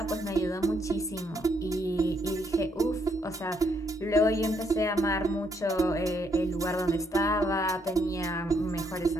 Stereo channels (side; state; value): both; normal; correlation 0.73